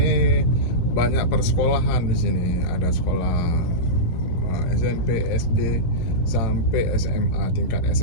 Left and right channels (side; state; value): right; late; 16 ms